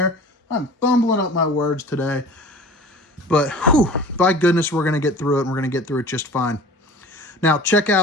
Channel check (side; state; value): both; normal; correlation 0.42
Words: I'm fumbling up my words today. But, whew, by goodness, we're going to get through it, and we're going to get through it just fine. Now, check